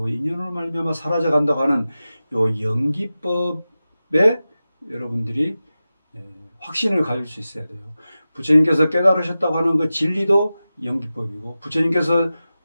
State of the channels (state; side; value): inverted; both; correlation -0.94